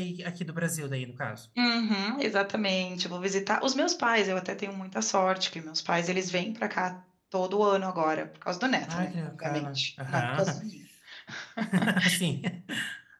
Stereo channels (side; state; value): both; identical; correlation 1.00